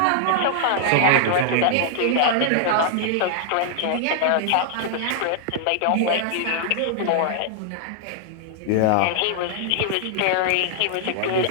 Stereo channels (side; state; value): both; different; correlation 0.00